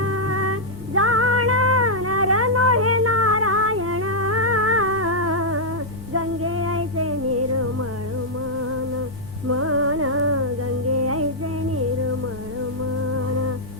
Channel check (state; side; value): normal; both; correlation -0.05